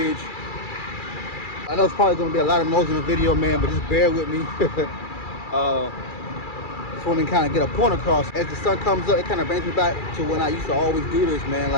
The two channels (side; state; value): right; late; 2.3 ms